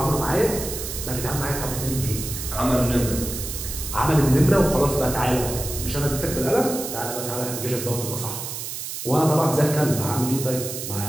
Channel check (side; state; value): right; noise; hiss, 7 dB below the sound